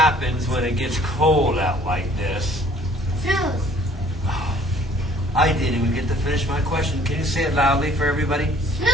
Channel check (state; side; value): normal; both; correlation 0.56